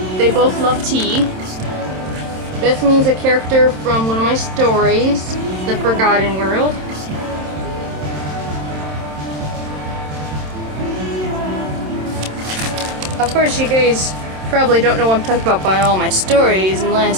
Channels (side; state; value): left; late; 27 ms